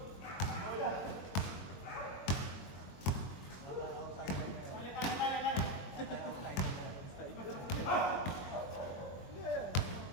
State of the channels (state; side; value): late; right; 22 ms